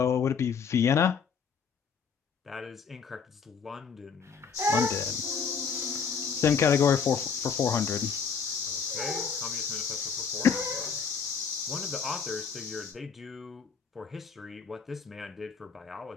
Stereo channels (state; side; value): quieter; right; 6.2 dB